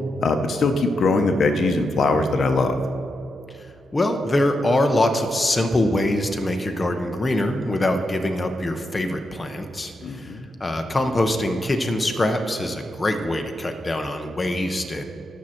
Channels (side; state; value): both; normal; correlation 0.85